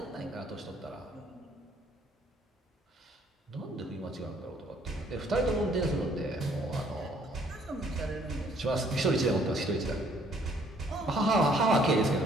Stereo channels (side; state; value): both; normal; correlation 0.63